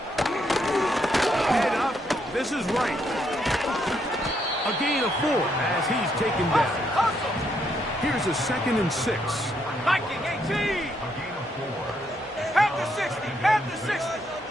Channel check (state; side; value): normal; both; correlation 0.75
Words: Head up. This is right. A gain of 4 as he's taken down. Hustle. Here's a 2nd and 6. Viking 18. Half the 60. Half the 60.